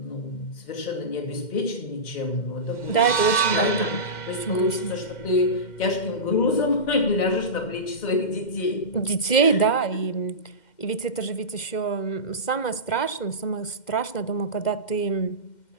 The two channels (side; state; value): right; late; 2.1 ms